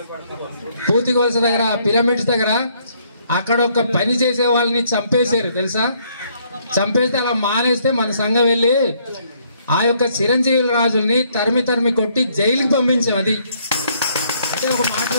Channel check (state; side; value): inverted; both; correlation -0.68